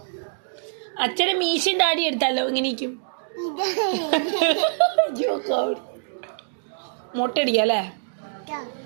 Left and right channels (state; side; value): silent; left; digital silence